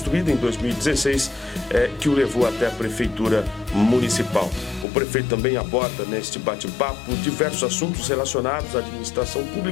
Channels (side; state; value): right; drops out; at 4.9 s